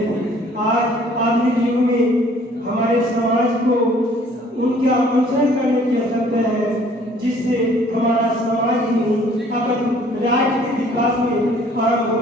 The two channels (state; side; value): normal; both; correlation 0.57